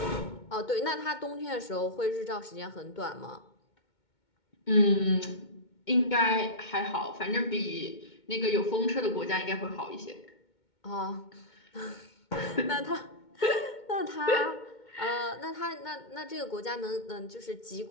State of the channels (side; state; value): right; late; 2.2 ms